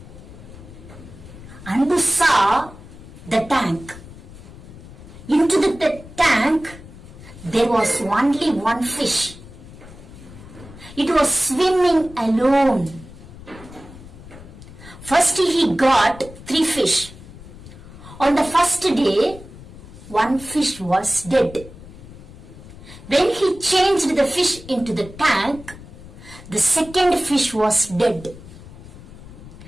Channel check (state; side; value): noise; left; rumble, 17 dB below the sound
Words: Anbu saw the tank. Into the tank there was only one fish. It was swimming alone. First he got 3 fish. On the first day, 1 fish was dead. When he changed the fish into the tank, the second fish was dead.